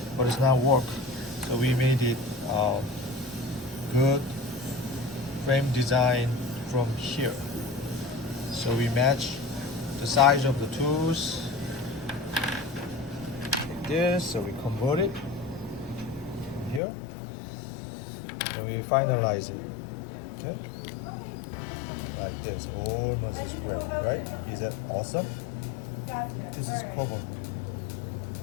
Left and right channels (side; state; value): right; drops out; at 16.8 s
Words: but it's not work. So we made it good frame design from here. So we match the size of the tools like this, so we convert it here, and we finalize it. Okay, like this. Almost is great, right? Is that awesome? This is covered.